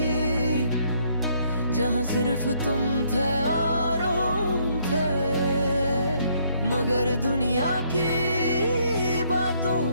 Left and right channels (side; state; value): both; inverted; correlation -0.68